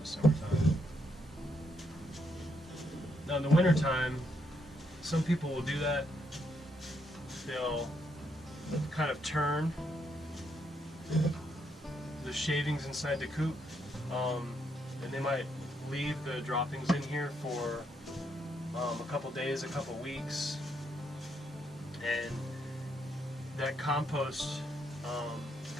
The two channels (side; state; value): both; normal; correlation 0.76